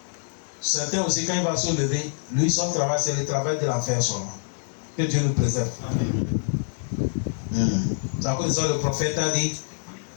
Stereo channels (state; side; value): silent; right; digital silence